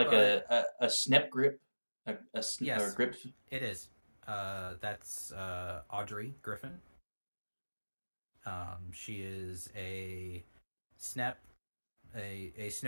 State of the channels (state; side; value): inverted; both; correlation -1.00